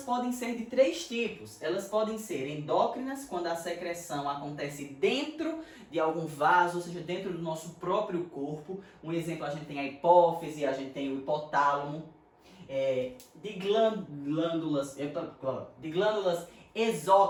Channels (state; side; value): identical; both; correlation 1.00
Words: podem ser de 3 tipos. Elas podem ser endócrinas, quando a secreção acontece dentro de algum vaso, ou seja, dentro do nosso próprio corpo. Um exemplo, a gente tem a hipófise, a gente tem o hipotálamo. De glândulas